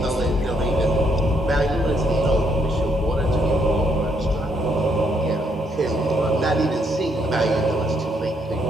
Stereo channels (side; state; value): both; normal; correlation 0.73